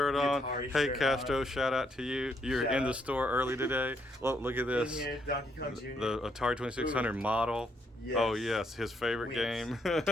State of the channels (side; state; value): both; normal; correlation 0.74